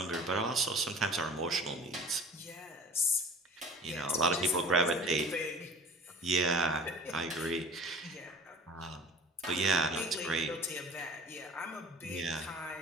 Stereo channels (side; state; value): both; normal; correlation 0.44